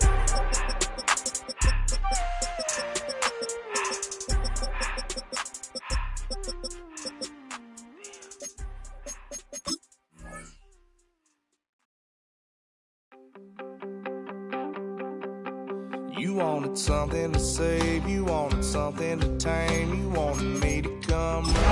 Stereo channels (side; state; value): both; identical; correlation 1.00